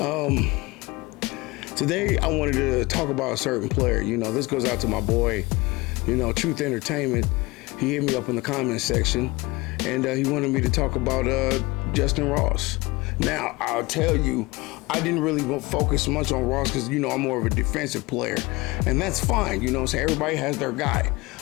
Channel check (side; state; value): right; quieter; 23.1 dB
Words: Today, I wanted to talk about a certain player. You know, this goes out to my boy, you know, Truth Entertainment. He hit me up in the comments section, and he wanted me to talk about Justyn Ross. Now, I'll tell you, I didn't really focus much on Ross because, you know, I'm more of a defensive player, and that's fine. You know, so everybody has their guy.